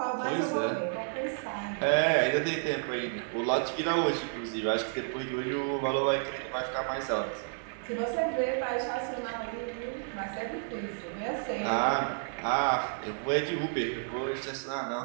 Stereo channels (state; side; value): silent; left; digital silence